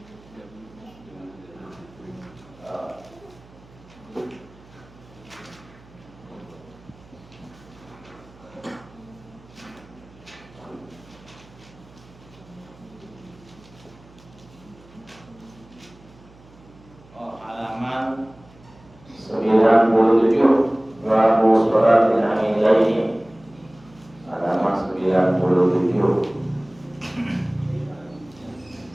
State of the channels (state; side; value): noise; right; hum, 24 dB below the sound